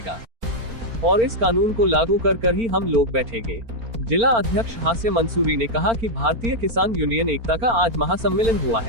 और इस कानून को लागू कर ही हम लोग बैठेंगे। जिला अध्यक्ष हास्य मंसूरी ने कहा कि भारतीय किसान यूनियन एकता का आज महासम्मेलन हुआ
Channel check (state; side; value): late; left; 4.4 ms